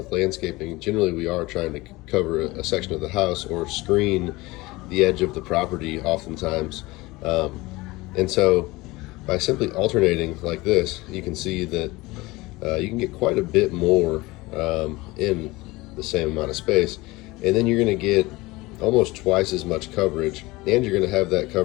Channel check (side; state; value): right; quieter; 21.3 dB